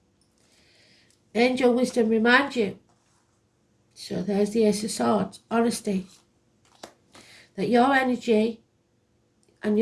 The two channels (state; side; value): identical; both; correlation 1.00